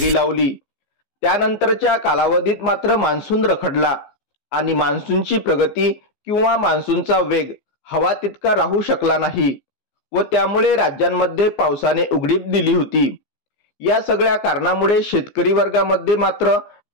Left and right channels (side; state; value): right; late; 15 ms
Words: लावली। त्यानंतरच्या कालावधीत मात्र मान्सून रखडला आणि मान्सूनची प्रगती किंवा मान्सूनचा वेग हवा तितका राहू शकला नाही व त्यामुळे राज्यांमध्ये पावसाने उघडीप दिली होती। या सगळ्या कारणामुळे शेतकरी वर्गामध्ये मात्र